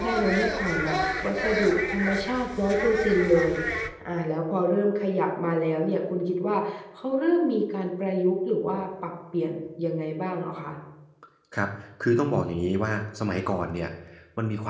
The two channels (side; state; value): both; identical; correlation 1.00